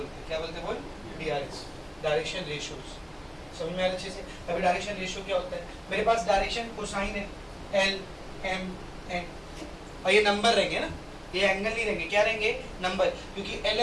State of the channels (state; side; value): identical; both; correlation 1.00